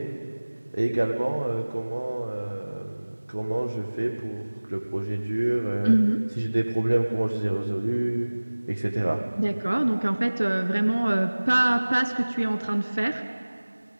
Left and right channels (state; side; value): inverted; both; correlation -1.00